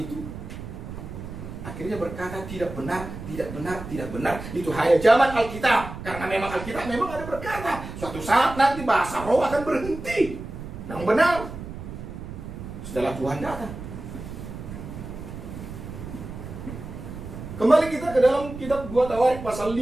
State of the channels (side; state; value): right; noise; rumble, 10 dB below the sound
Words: akhirnya berkata tidak benar. Itu hanya zaman Alkitab. Karena memang Alkitab memang ada berkata, suatu saat nanti bahasa roh akan berhenti. Yang benar, setelah Tuhan datang. Kembali kita ke dalam kitab 2 Tawarik pasal